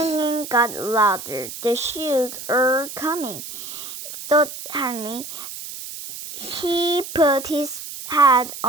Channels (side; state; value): right; noise; hiss, 10 dB below the sound